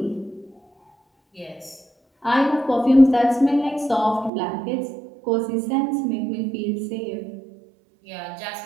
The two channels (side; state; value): left; drops out; at 4.3 s